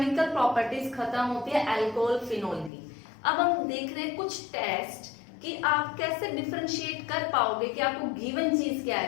प्रॉपर्टीज खत्म होती है अल्कोहल फिनोल की। अब हम देख रहे हैं कुछ टेस्ट कि आप कैसे डिफरेंशिएट कर पाओगे कि आपको गिवन चीज क्या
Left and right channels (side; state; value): right; drops out; at 2.7 s